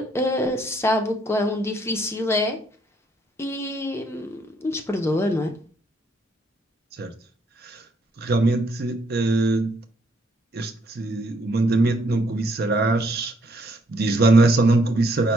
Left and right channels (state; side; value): normal; both; correlation 0.70